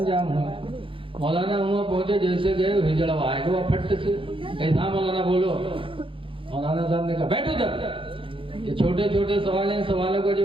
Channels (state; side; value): late; left; 0.25 ms